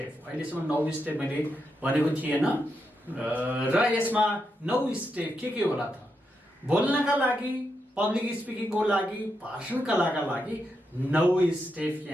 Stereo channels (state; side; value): normal; both; correlation 0.84